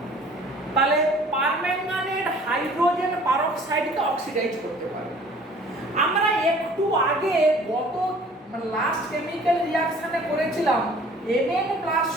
তাহলে পারম্যাঙ্গানেট হাইড্রোজেন পারক্সাইডকে অক্সিডাইজ করতে পারে। আমরা একটু আগে গত লাস্ট কেমিক্যাল রিঅ্যাকশনে করেছিলাম Mn plus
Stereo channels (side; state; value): both; normal; correlation 0.51